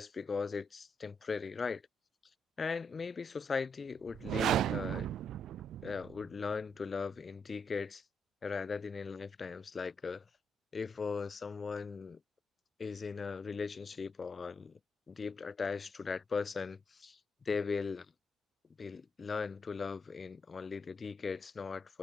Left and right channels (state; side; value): normal; both; correlation 0.79